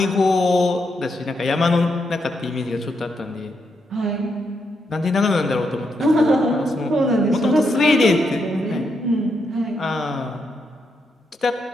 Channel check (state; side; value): normal; both; correlation 0.81